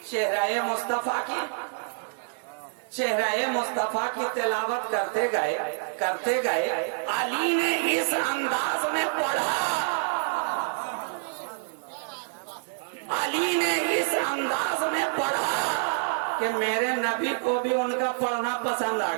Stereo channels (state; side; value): silent; left; digital silence